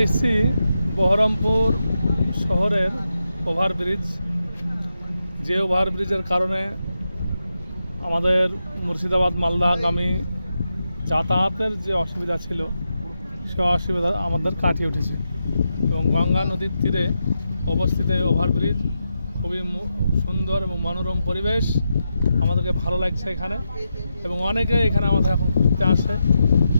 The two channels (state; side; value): inverted; both; correlation -0.87